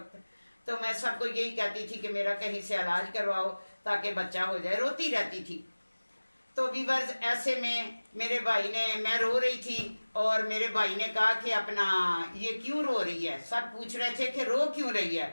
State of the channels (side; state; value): both; inverted; correlation -1.00